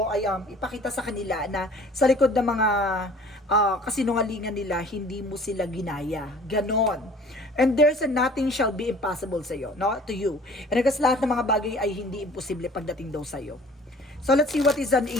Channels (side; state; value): both; normal; correlation 0.49